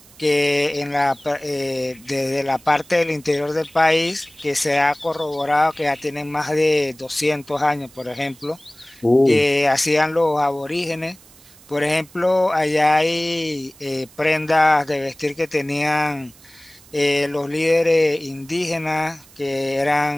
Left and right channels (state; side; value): noise; right; hiss, 25 dB below the sound